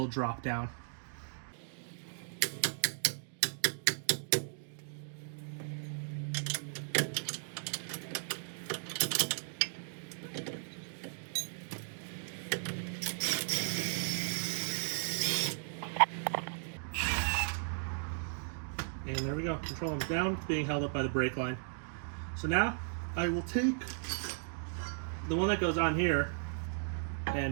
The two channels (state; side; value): silent; left; digital silence